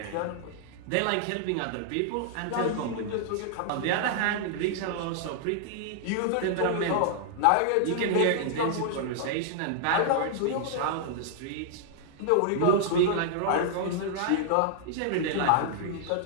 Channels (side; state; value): both; different; correlation -0.01